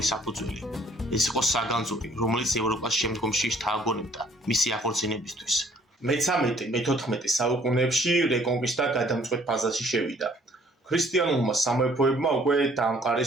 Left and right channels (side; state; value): both; normal; correlation 0.60